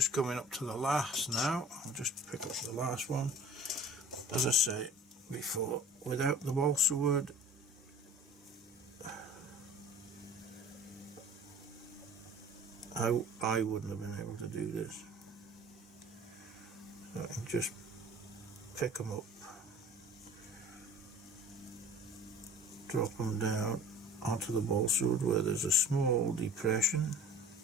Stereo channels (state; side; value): normal; both; correlation 0.45